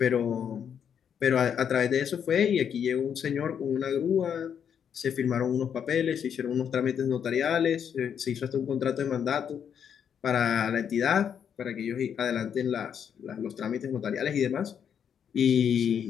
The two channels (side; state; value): right; quieter; 8.1 dB